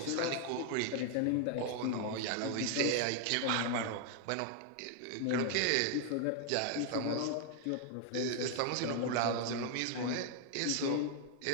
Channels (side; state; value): both; different; correlation 0.00